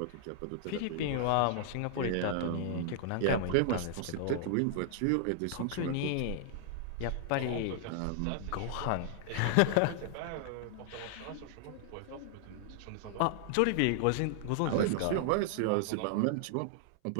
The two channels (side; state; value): both; different; correlation -0.01